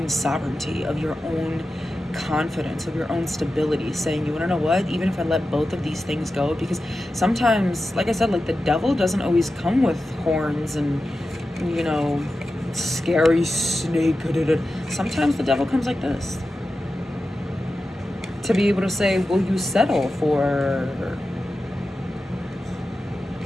sovereignty, of your own confidence, of your own stability, saying, you want to know what, even if I let both of these things go, because sometimes, like I said, like the devil doesn't always come with horns and, you know, scary snake. Sometimes the devil comes like this, to be able to say, will you settle for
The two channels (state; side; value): normal; both; correlation 0.92